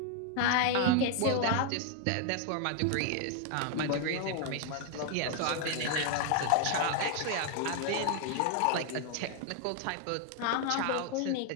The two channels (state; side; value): different; both; correlation 0.00